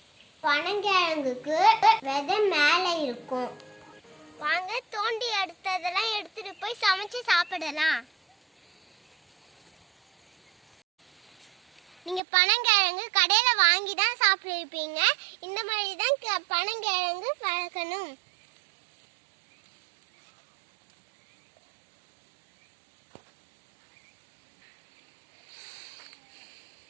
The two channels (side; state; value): left; drops out; at 12.2 s